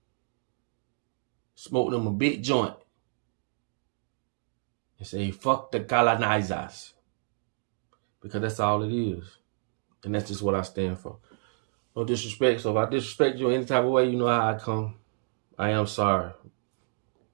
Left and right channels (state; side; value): silent; left; digital silence